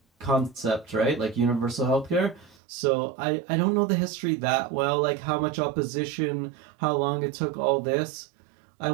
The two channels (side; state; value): left; drops out; at 2.6 s